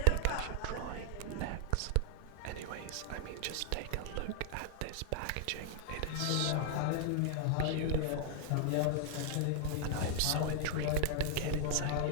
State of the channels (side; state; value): both; different; correlation 0.00